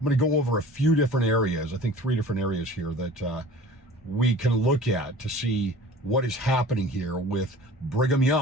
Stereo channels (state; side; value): normal; both; correlation 0.43